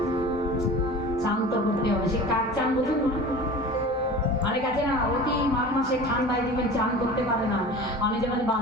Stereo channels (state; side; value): normal; both; correlation 0.37